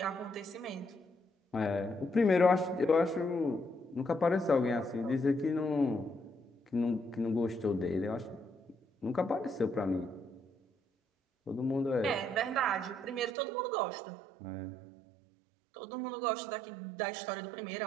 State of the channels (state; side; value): drops out; left; at 13.4 s